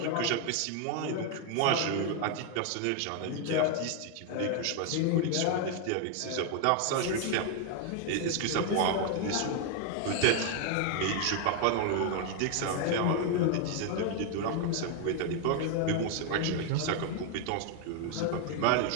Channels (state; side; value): different; both; correlation 0.01